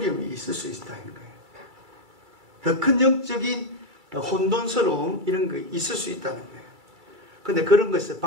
있을 수 있다는 거예요. 더 큰 영적인 혼돈스러움 이런 거 있을 수 있다는 거예요. 그런데 그런 것을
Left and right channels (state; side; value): late; left; 2.3 ms